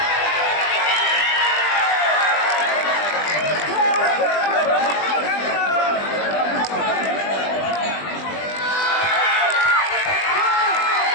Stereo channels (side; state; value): right; late; 20 ms